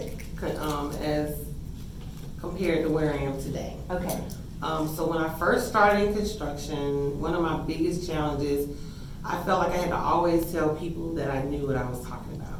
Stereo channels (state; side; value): identical; both; correlation 1.00